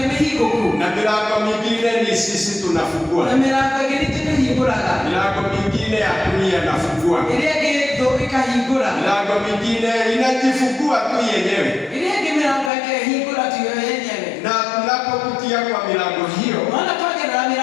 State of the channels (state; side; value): drops out; right; at 12.7 s